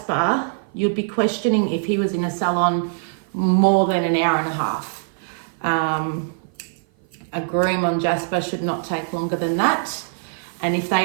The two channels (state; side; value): silent; left; 55 dB below the other